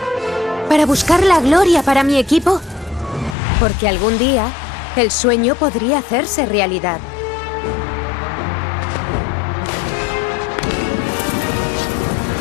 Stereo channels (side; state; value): right; drops out; at 3.4 s